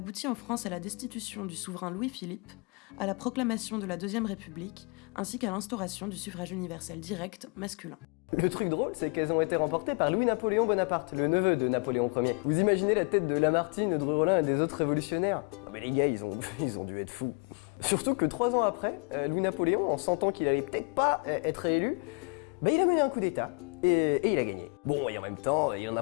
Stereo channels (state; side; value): quieter; right; 31.9 dB